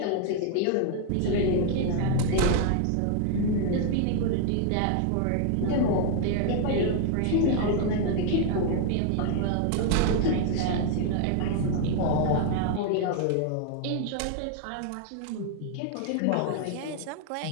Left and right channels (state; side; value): different; both; correlation 0.00